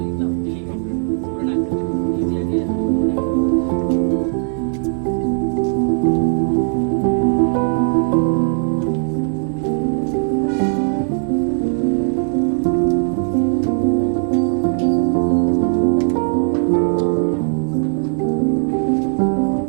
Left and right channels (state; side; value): silent; left; digital silence